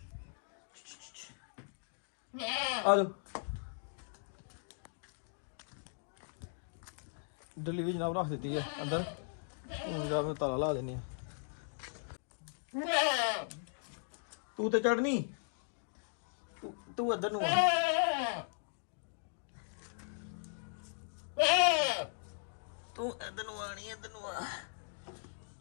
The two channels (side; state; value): right; silent; digital silence